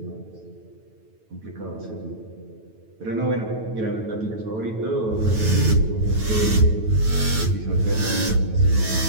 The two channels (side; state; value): left; late; 9.2 ms